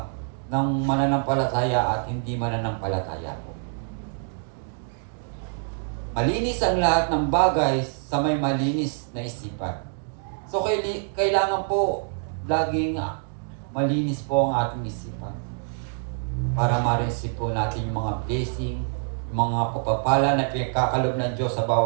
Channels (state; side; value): silent; left; 60 dB below the other